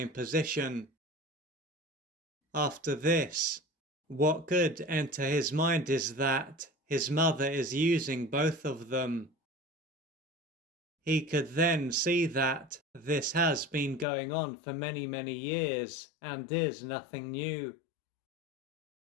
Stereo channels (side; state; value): right; drops out; at 14.1 s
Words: position. After this, what could enter his mind is that his mother is using both of them. He could then see that this has been going on for many, many years and is nothing new.